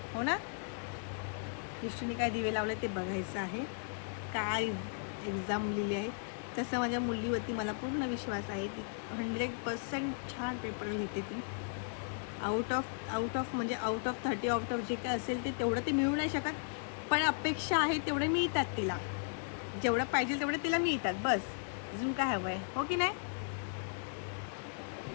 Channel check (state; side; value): silent; right; digital silence